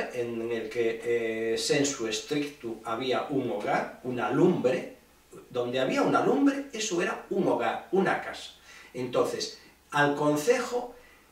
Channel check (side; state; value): both; identical; correlation 1.00